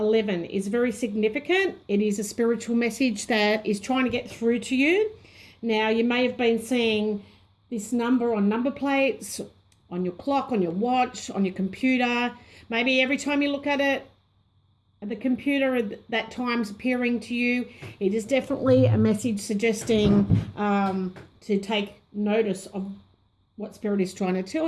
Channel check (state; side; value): identical; both; correlation 1.00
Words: is very significant. It is a spiritual message that is trying to get through to you. Now, you may have been seeing this number on number plates, on your clock, on your watch, on your computer. Maybe every time you look at it, the computer that time's appearing to you. It is definitely a message suggesting to take notice of what Spirit is trying to tell